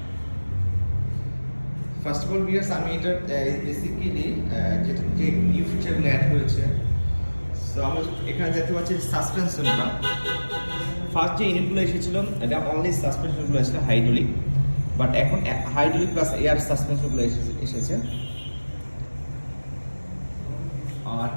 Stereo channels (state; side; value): inverted; both; correlation -1.00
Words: ফার্স্ট অফ অল ভিউয়ার্স, আমি এটা বেসিক্যালি যেটা যে নিউ ফিচারগুলো অ্যাড হয়েছে, সো আমরা এখানে দেখতে পাচ্ছি সাসপেনশনটা। ফার্স্ট যে ইউনিটগুলো এসেছিল এটা অনলি সাসপেনশনগুলো এসেছিল হাইড্রোলিক, বাট এখন হাইড্রোলিক প্লাস এয়ার সাসপেনশনগুলো এসেছে। আর